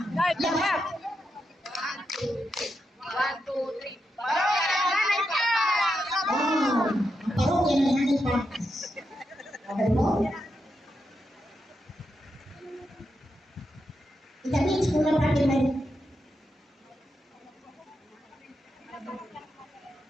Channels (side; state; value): both; normal; correlation 0.85